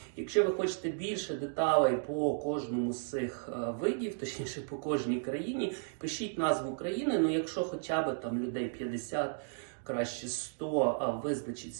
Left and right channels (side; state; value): left; silent; digital silence